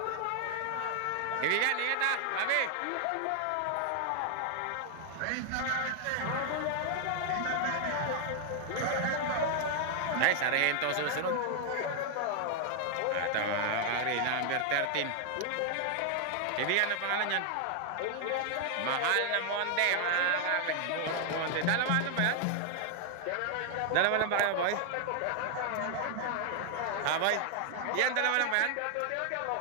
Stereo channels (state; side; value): different; both; correlation 0.00